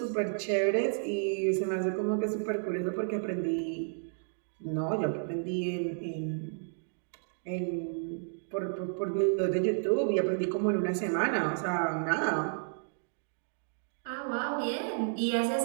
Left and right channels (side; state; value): left; silent; digital silence